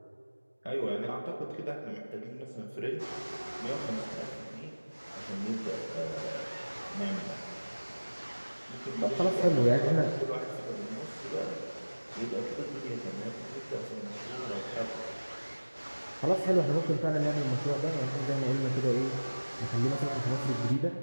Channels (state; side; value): inverted; both; correlation -1.00